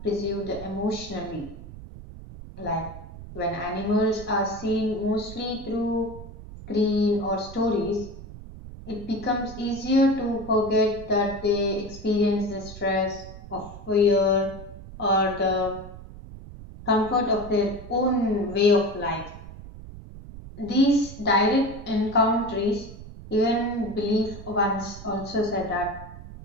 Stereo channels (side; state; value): right; noise; rumble, 14 dB below the sound